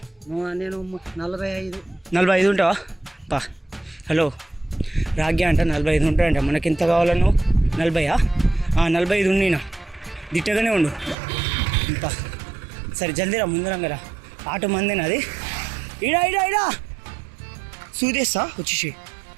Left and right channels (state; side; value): drops out; left; at 11.2 s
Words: నేను 45. 45 ఉంటావా? పా. హలో రాగ్య అంట 45 ఉంటాయంట. మనకి ఎంత కావాలా? నువ్వు 40? 45 ఉన్నీనా. దిట్టగానే ఉండు. పా. సరే జల్దీరా ముందరంగరా. ఆటో మందేనా అది? ఇడా సూదేస్తా వచ్చేసి.